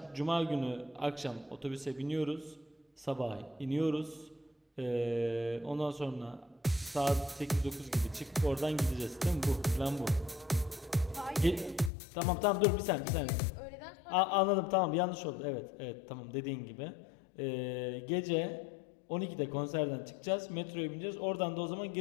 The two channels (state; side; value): drops out; right; at 11.9 s